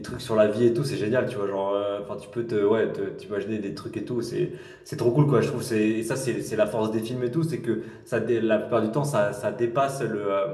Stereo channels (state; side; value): identical; both; correlation 1.00